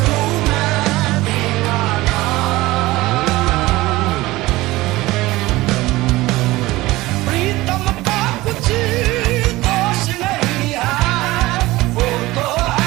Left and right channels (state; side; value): quieter; left; 18.9 dB